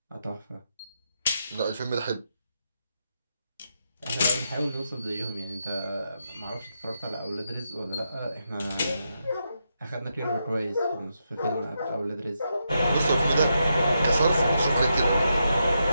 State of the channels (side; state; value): both; inverted; correlation -0.84